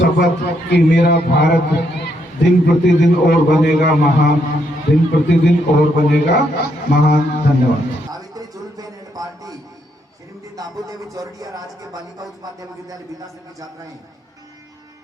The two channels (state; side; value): normal; both; correlation 0.76